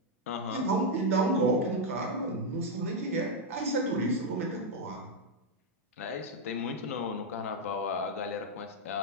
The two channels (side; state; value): both; normal; correlation 0.00